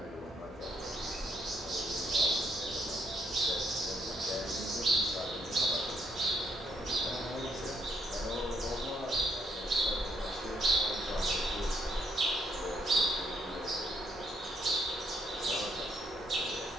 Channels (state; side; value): normal; both; correlation 0.72